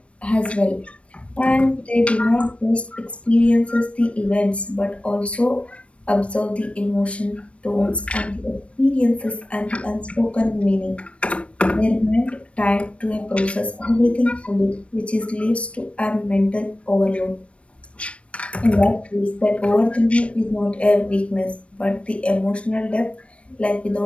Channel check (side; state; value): right; late; 0.062 ms